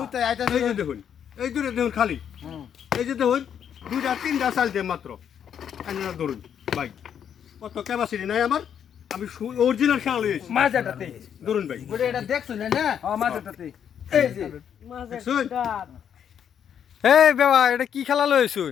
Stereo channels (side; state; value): right; quieter; 8.6 dB